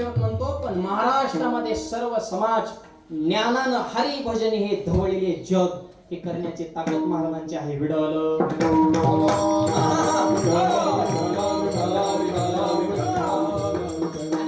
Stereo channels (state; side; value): identical; both; correlation 1.00